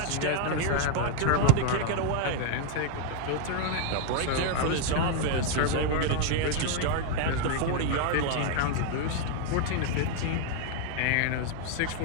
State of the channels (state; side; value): different; both; correlation 0.01